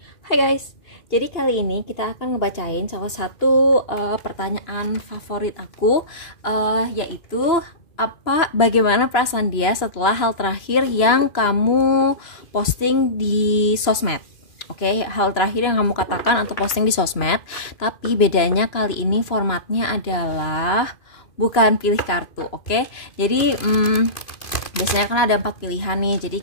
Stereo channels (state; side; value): late; right; 2.9 ms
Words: Hai guys, jadi kali ini kita akan ngebacain salah satu pertanyaan favorit aku, yaitu bagaimana perasaan dia setelah hal terakhir yang kamu posting di sosmed. Oke, hal terakhir yang kamu katakan atau posting di sosmed. Tapi bedanya kali ini formatnya adalah bukan pilih kartu. Oke, jadi biasanya kan ada 4 pilihan nih. Jadi